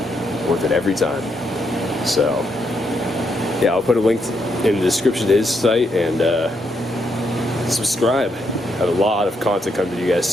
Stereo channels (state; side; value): normal; both; correlation 0.78